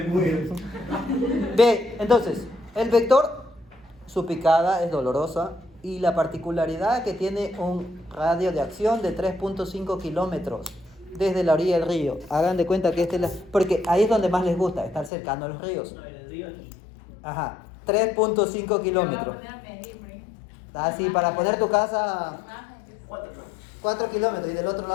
muero. Ve, entonces, el vector, su picada es dolorosa y la particularidad que tiene un radio de acción de 3.5 kilómetros desde la orilla del río. Hagan de cuenta que este es la... Porque ahí es donde más les gusta, estar cercano a los ríos. No, en el río aquí. Ajá, 3.5 kilómetros. Me voy a poner a medir, por ahí. Así, para poner tu casa Más gente. 4 kilómetros y del otro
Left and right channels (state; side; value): drops out; right; at 15.1 s